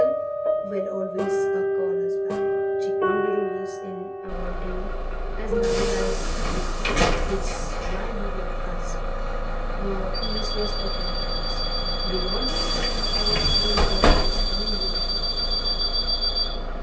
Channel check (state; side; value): identical; both; correlation 1.00